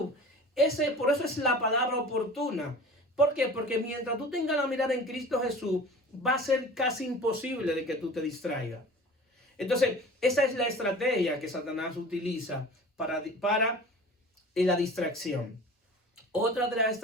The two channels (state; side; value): normal; both; correlation 0.40